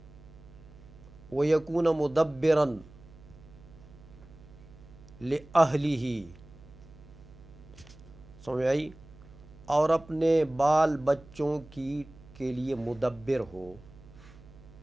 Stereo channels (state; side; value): noise; right; hum, 21 dB below the sound